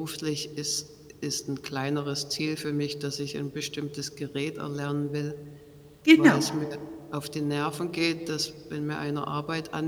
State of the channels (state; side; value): identical; both; correlation 1.00